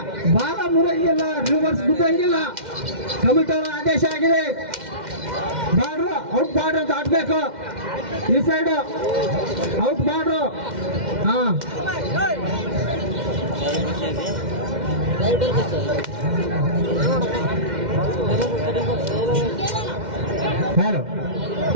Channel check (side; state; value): left; late; 2.1 ms